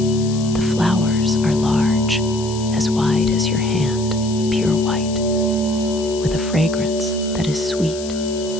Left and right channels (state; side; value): noise; left; hiss, 13 dB below the sound